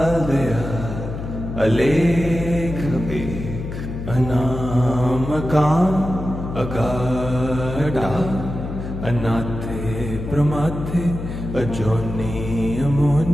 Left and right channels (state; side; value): noise; left; hum, 7 dB below the sound